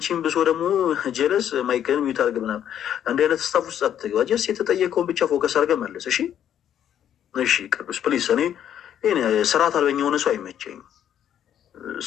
ብሶ ደግሞ ጀለስ ማይክል ሚት አድርግ ምናምን እንዲህ አይነት ስታፍ ውስጥ አትግባ። ጀስ የተጠየቀውን ብቻ ፎከስ አድርገህ መልስ እሺ። እሺ ቅዱስ ፕሊስ። እኔ ስርዓት አልበኛ የሆነ ሰው አይመቸኝም።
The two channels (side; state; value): right; quieter; 10.0 dB